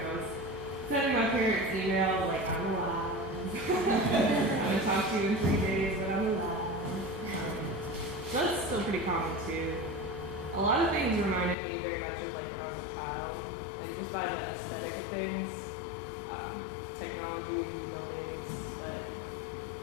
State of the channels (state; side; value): drops out; right; at 11.6 s